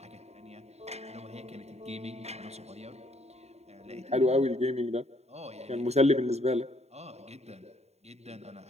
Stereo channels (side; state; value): left; late; 0.31 ms